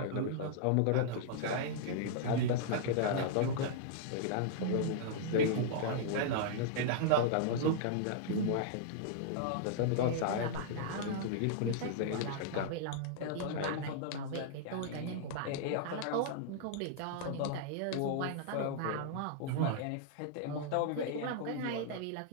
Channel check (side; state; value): both; different; correlation -0.01